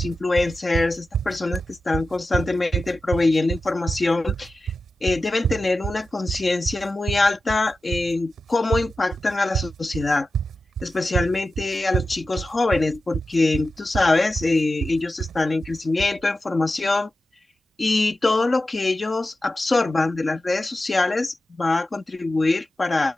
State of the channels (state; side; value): normal; both; correlation 0.93